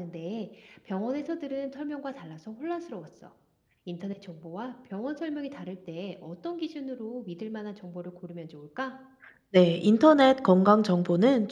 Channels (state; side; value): identical; both; correlation 1.00